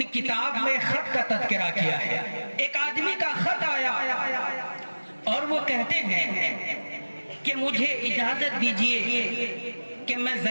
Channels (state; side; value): inverted; both; correlation -1.00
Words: کتاب میں خط کا تذکرہ کیا ہے۔ ایک آدمی کا خط آیا اور وہ کہتے ہیں کہ مجھے اجازت دیجئے کہ میں